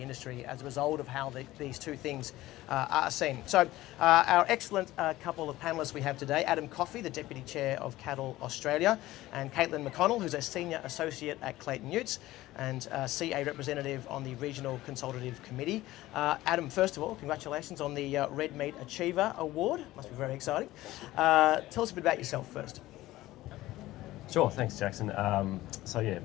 as a result of how these two things are seen. So our excellent couple of panellists we have today, Adam Coffey, the Deputy Chair of Cattle Australia, and Clayton McConnel, who's a Senior Associate at Clayton Utes and CA representative on the Regional Consultative Committee. Adam, first of all, congratulations on the Red Meat Achiever Award. Must be very exciting. Tell us a bit about yourself first. Sure, thanks Jackson. So yeah,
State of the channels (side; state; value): right; quieter; 16.7 dB